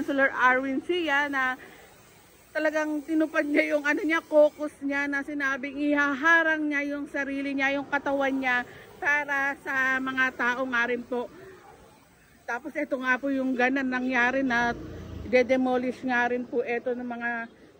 Arwin Sia na talagang tinupad niya yung caucus niya na sinabing ihaharang niya yung sarili niya, yung katawan niya para sa mga tao nga rin po. Tapos ito nga po yung ganan nangyari na de-demolish nga rin po ito ng mga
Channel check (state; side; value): identical; both; correlation 1.00